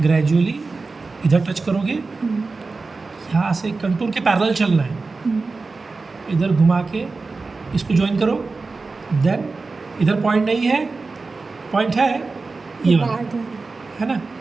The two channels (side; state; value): left; quieter; 3.9 dB